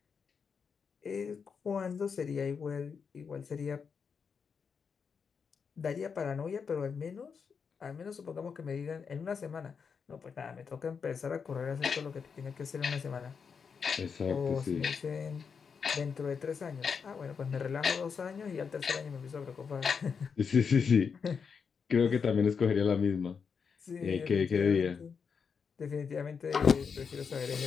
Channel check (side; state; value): right; quieter; 6.0 dB